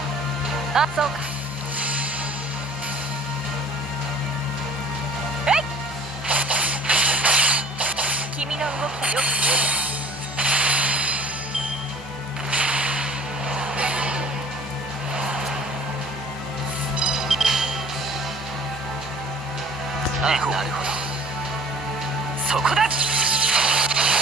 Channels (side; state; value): both; normal; correlation 0.49